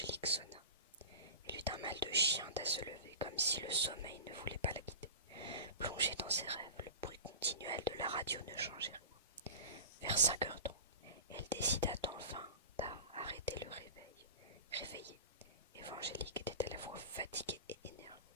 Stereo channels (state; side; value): inverted; both; correlation -0.31